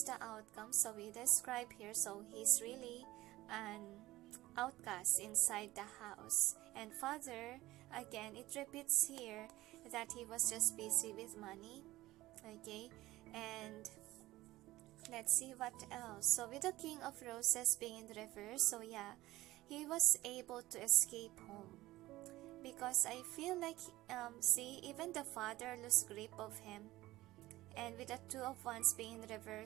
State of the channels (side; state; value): left; quieter; 17.3 dB